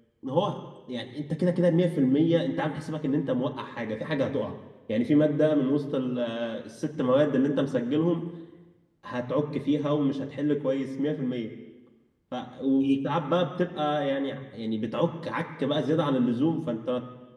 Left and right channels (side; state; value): both; identical; correlation 1.00